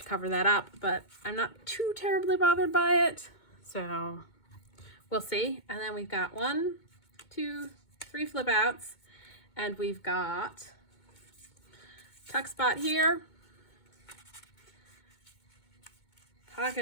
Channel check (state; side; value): late; right; 2.2 ms